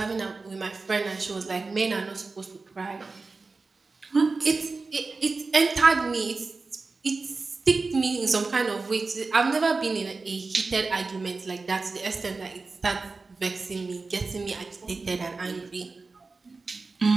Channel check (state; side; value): quieter; left; 3.9 dB